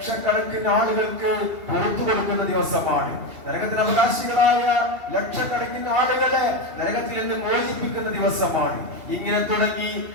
ആളുകൾക്ക് പുറത്തു കൊടുക്കുന്ന ദിവസമാണ്. നരകത്തിന് അവകാശികളായ ലക്ഷക്കണക്കിന് ആളുകളെ നരകത്തിൽ നിന്ന് മോചിപ്പിക്കുന്ന ദിവസമാണ്. ഇങ്ങനെ തുടങ്ങി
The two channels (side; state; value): left; late; 2.8 ms